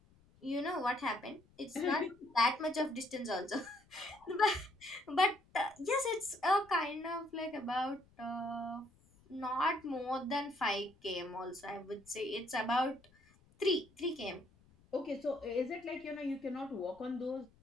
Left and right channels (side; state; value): left; noise; rumble, 29 dB below the sound